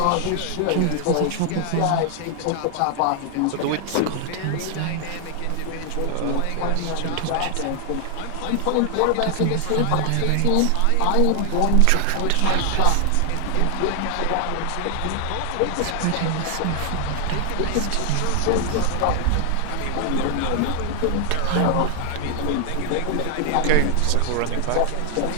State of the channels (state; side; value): different; both; correlation 0.00